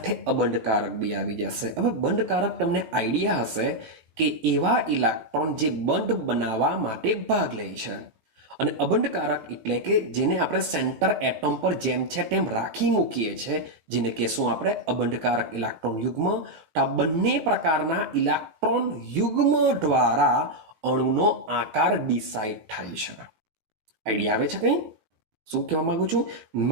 અબંધકારક બી આવી જશે. હવે બંધકારક તમને આઈડિયા હશે કે એવા ઇલેક્ટ્રોન જે બંધ બનાવવા માટે ભાગ લે છે, અને અબંધકારક એટલે કે જેને આપણે સેન્ટર એટમ પર જેમ છે તેમ રાખી મૂકીએ છીએ, જેને કહેશું આપણે અબંધકારક ઇલેક્ટ્રોન યુગ્મ. તો આ બંને પ્રકારના ઇલેક્ટ્રોન યુગ્મ દ્વારા અણુનો આકાર ડિસાઇડ થાય છે. આઈડિયા આવે છે કંઈ? શું કહેવા માંગુ છું?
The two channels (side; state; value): left; late; 19 ms